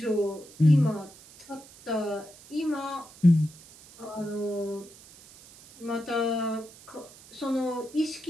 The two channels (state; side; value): noise; right; hiss, 22 dB below the sound